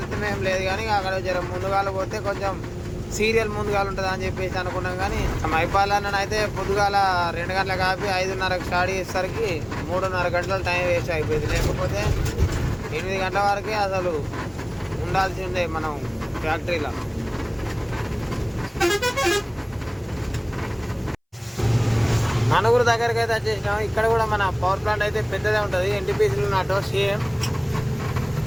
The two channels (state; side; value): identical; both; correlation 1.00